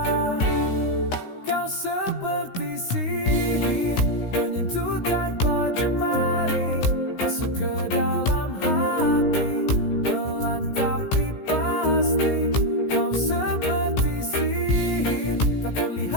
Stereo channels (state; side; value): late; right; 16 ms